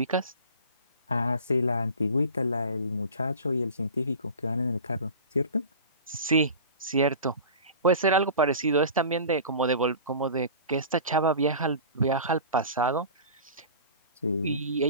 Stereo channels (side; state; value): both; inverted; correlation -0.36